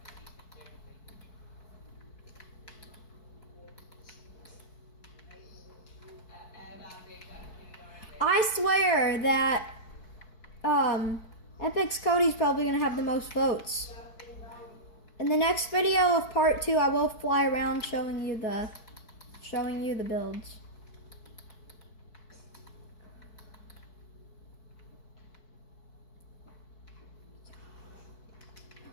I swear that Epix Cody's probably gonna have the most votes. In the next video of part 2, I will fly around showing you the builds.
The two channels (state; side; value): late; right; 4.6 ms